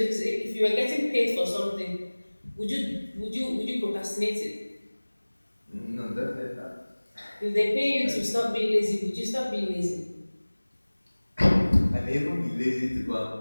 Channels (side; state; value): both; inverted; correlation -1.00